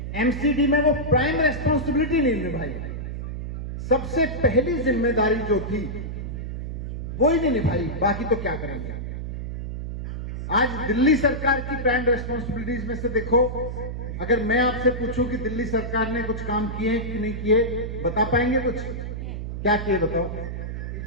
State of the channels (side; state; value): right; noise; hum, 5 dB below the sound